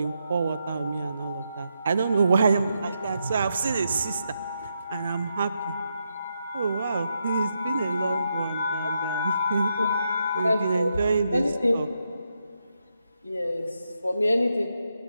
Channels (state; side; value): inverted; both; correlation -0.83